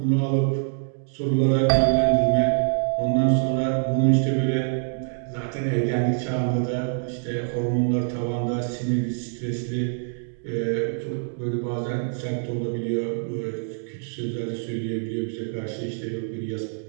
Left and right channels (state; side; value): silent; left; 62 dB below the other